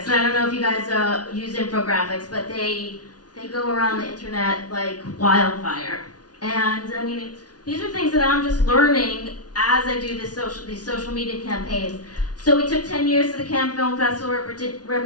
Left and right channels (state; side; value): late; right; 0.69 ms